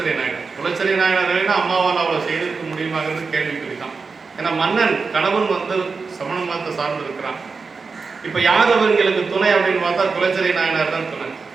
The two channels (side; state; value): left; quieter; 4.6 dB